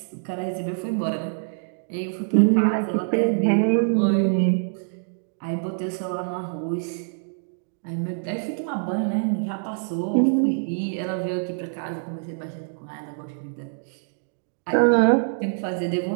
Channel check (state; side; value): silent; left; digital silence